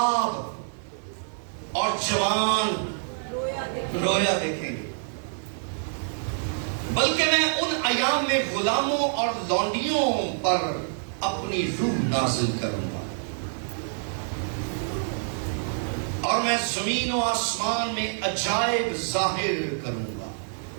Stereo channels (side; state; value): left; silent; digital silence